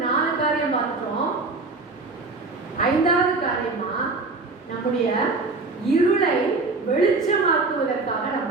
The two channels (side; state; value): left; quieter; 3.7 dB